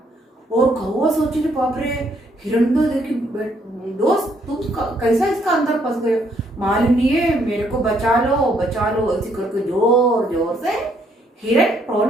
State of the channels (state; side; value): normal; both; correlation 0.70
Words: और कौवा सोचे बाप रे, हिरण तो देखी दोस्त तुम कैसा इसका अंदर फंस गए, मालूम नहीं है, मेरे को बचा लो बचा लो, ऐसे करके जोर जोर से हिरण